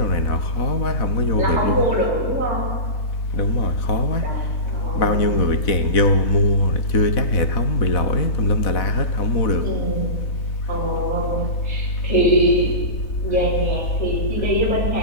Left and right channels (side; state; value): right; late; 4.1 ms